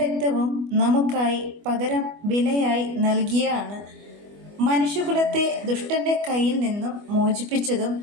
നമുക്കായി പകരം വിലയായി നൽകിയാണ് മനുഷ്യകുലത്തെ ദുഷ്ടൻ്റെ കയ്യിൽ നിന്നും മോചിപ്പിച്ചതും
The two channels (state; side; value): late; left; 25 ms